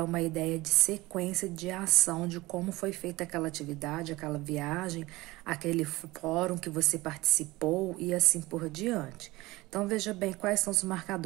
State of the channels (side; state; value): left; quieter; 20.2 dB